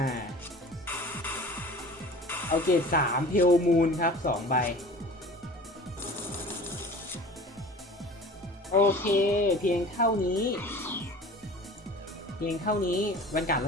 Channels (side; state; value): both; normal; correlation 0.42